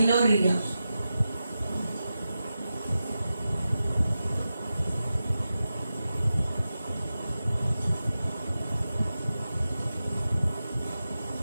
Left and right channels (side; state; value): both; inverted; correlation -0.92